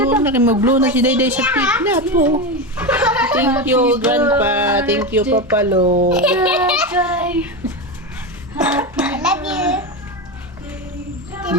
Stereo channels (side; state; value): both; normal; correlation 0.17